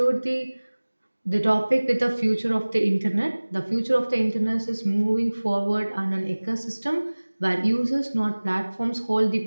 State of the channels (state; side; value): inverted; both; correlation -1.00